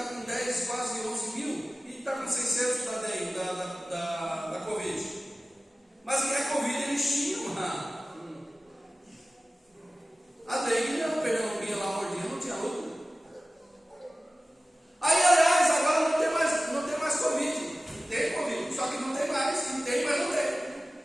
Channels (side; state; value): both; normal; correlation 0.96